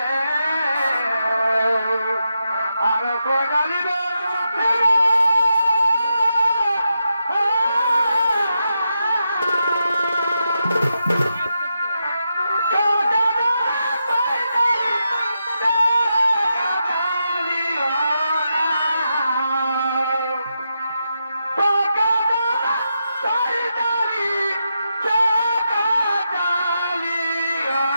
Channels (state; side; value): inverted; both; correlation -0.86